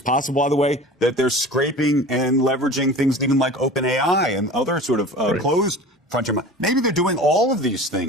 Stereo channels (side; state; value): both; normal; correlation 0.38